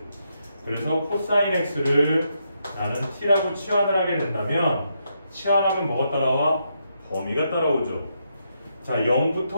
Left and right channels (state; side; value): inverted; both; correlation -0.80